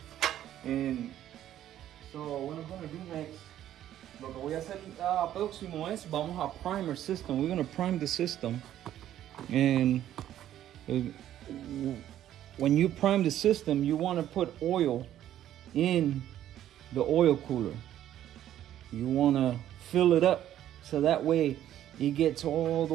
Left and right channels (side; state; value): left; quieter; 11.9 dB